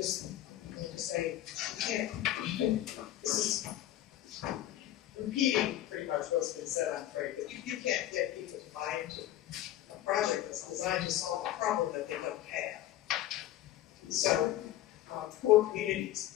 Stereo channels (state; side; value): quieter; right; 13.4 dB